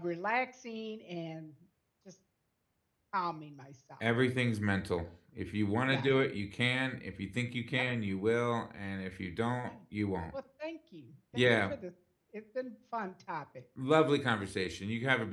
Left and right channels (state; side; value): identical; both; correlation 1.00